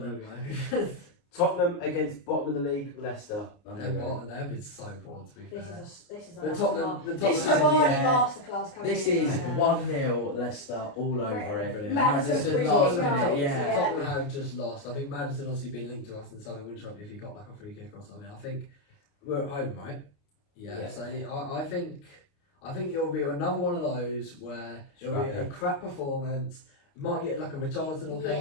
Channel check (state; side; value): late; right; 29 ms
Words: know. Tottenham against bottom of the league, Leicester. They've been so poor, to be fair. This is a The masterclass. Tottenham- the This is a Tottenham- Vardy yeah. masterclass coming This in is right now. 1-0 Leicester all over it. Brilliant. Madison free last kick minute, goals, yeah. Tottenham have just lost. I think Madison obviously been linked to us in something. Wouldn't shock me if he got like a free kick or something. I think we're at home, right? Yeah. So I think it'll be another one of those where it'll be a Scrappy. crap performance. Might get like a Richarlison or